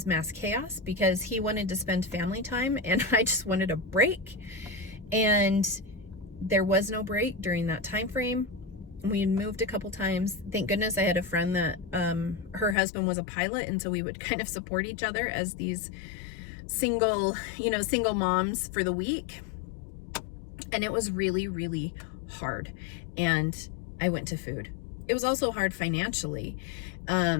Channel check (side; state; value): right; drops out; at 12.8 s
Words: mass chaos because he wanted to spend family time and I just wanted a break. And there was no break during that time frame. We had moved a couple times. Thank goodness I had a friend that her husband was a pilot, and so we would kind of support each other as these single moms for the week. And it was really, really hard. And I went to food. It was also hard financially,